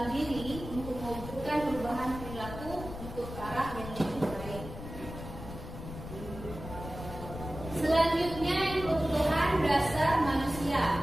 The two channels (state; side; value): noise; left; rumble, 10 dB below the sound